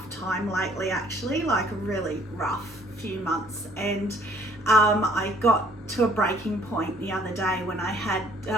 time lately, actually, like a really rough few months, and I got to a breaking point the other day when I had,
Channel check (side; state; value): both; normal; correlation 0.59